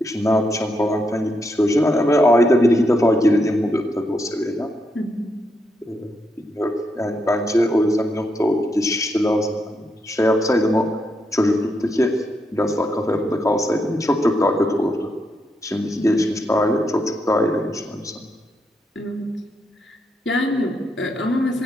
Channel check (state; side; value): normal; both; correlation 0.81